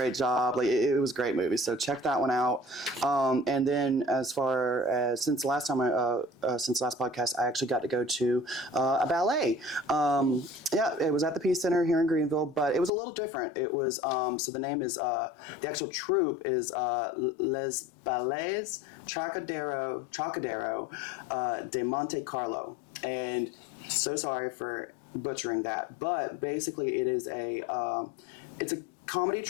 job. Like it was a great movie. So check that one out. And then as far as since last podcast, I actually got to go to a ballet. It was at the Peace Center here in Greenville, but it was a little different. It was so the name is the actual troupe is Les Ballets Trocadero de Monte Carlo, and so sorry for butchering that, but basically it is it's a comedy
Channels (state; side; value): drops out; right; at 12.9 s